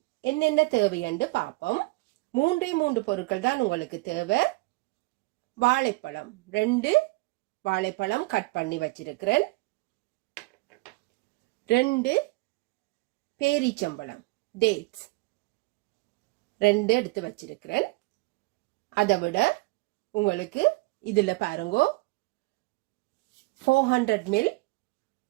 என்னென்ன தேவைன்னு பார்ப்போம். மூன்று பொருட்கள் தான் உங்களுக்கு தேவை. வாழைப்பழம் 2 வாழைப்பழம் கட் பண்ணி வச்சிருக்கிறேன். 2 பேரிச்சம்பழம் டேட்ஸ் 2 எடுத்து வச்சிருக்கிறேன். அதை விட உங்களுக்கு இதில் பாருங்கோ 400 ml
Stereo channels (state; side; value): quieter; left; 23.6 dB